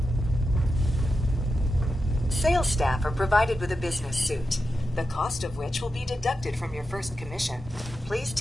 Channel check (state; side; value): normal; both; correlation 0.89